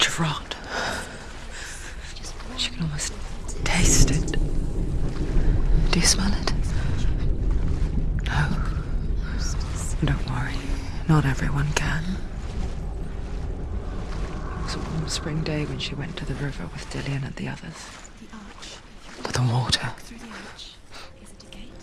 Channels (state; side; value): identical; both; correlation 1.00